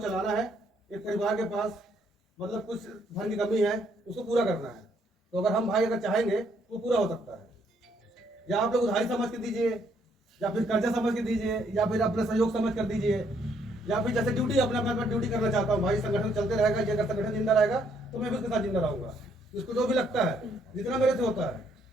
है, एक परिवार के पास मतलब कुछ धन की कमी है, उसको पूरा करना है। तो अगर हम भाई अगर चाहेंगे तो पूरा हो सकता है। या आप लोग उधारी समझ के दीजिए, या फिर कर्जा समझ के दीजिए, या फिर अपने सहयोग समझ कर दीजिए, या फिर जैसे ड्यूटी अपना ड्यूटी करना चाहता हूँ भाई, संगठन चलते रहेगा, ये अगर संगठन जिंदा रहेगा तो मैं भी उसके साथ जिंदा रहूंगा। इसको जो भी लगता है, जितना मेरे से होता है,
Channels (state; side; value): normal; both; correlation 0.69